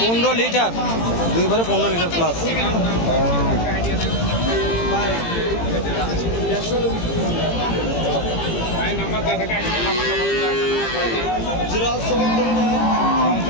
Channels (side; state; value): right; late; 18 ms